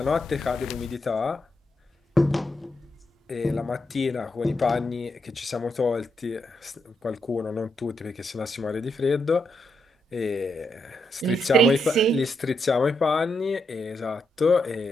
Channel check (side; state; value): both; normal; correlation 0.81